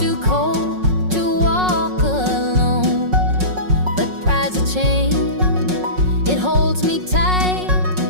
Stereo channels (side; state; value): left; late; 5.4 ms